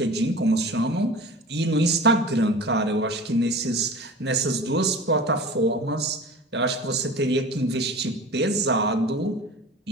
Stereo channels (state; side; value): normal; both; correlation 0.38